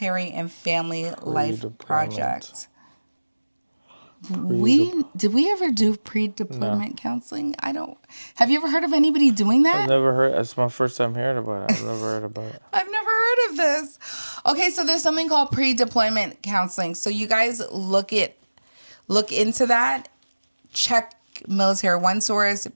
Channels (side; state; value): both; inverted; correlation -1.00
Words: and Family Life Project. Did we ever do pre-deployment counseling? I don't. Have you ever heard of anybody doing that? I've never heard. It's my first time hearing about it. I've never heard about it. I've never heard of this. Okay, so there's something called pre-deployment counseling. So you guys look into that. Check Military One Source,